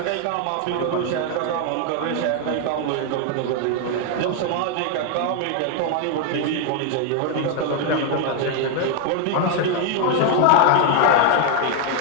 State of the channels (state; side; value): different; both; correlation 0.01